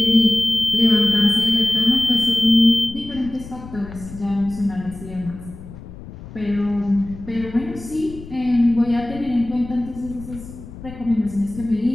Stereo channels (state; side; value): noise; left; rumble, 15 dB below the sound